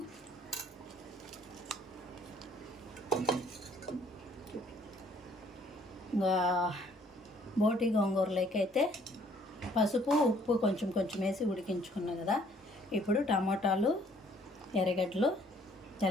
ఇంకా బోటి గోంగూరలోకి అయితే పసుపు ఉప్పు కొంచెం వేసి ఉడికించుకున్నా కదా. ఇప్పుడు టమాటాలు ఎర్రగడ్డలు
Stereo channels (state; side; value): normal; both; correlation 0.61